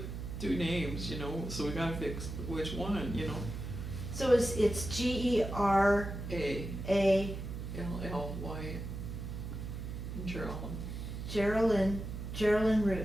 two names, you know, so we gotta fix which one, you know. So it's Geralyn. A-L-L-Y, Geraldine. Geraldine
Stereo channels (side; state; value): right; noise; hum, 7 dB below the sound